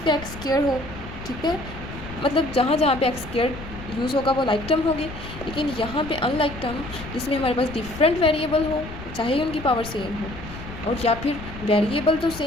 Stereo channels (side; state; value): left; noise; rumble, 12 dB below the sound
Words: एक्स स्क्वायर हो। ठीक है, मतलब जहाँ जहाँ पे एक्स स्क्वायर यूज़ होगा वो लाइक टर्म होगी। लेकिन यहाँ पे अनलाइक टर्म जिसमें हमारे पास डिफरेंट वेरिएबल हो, चाहे उनकी पावर सेम हो, और या फिर वेरिएबल तो